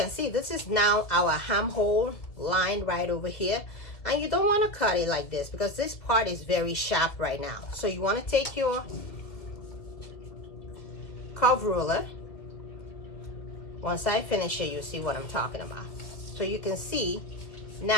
see this is now our hem hole line right over here. And you don't want to cut it like this because this part is very sharp right now. So you want to take your curve ruler. Once I finish it, you'll see what I'm talking about. So you can see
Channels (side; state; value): right; late; 2.3 ms